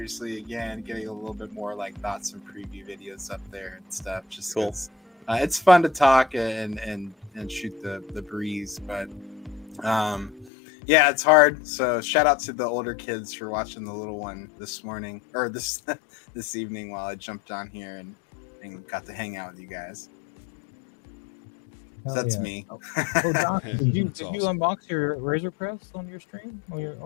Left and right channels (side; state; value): right; drops out; at 10.5 s